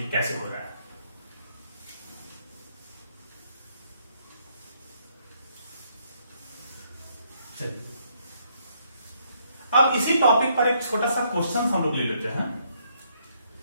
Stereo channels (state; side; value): inverted; both; correlation -0.71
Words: कैसे हो रहा है। अब इसी टॉपिक पर एक छोटा सा क्वेश्चन हम लोग ले लेते हैं।